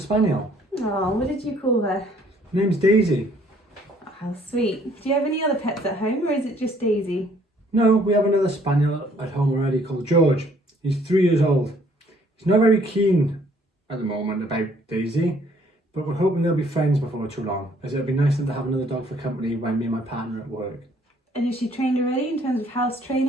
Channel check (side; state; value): both; normal; correlation 0.62